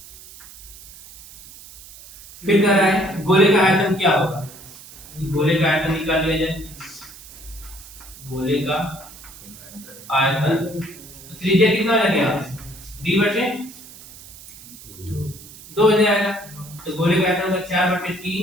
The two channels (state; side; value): noise; right; hiss, 18 dB below the sound